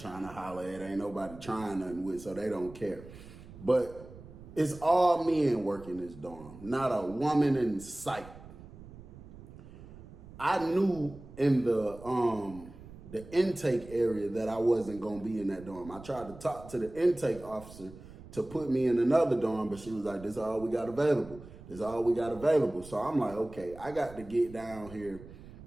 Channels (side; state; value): right; noise; rumble, 17 dB below the sound